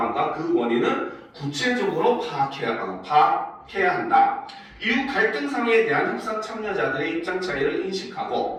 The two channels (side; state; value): both; identical; correlation 1.00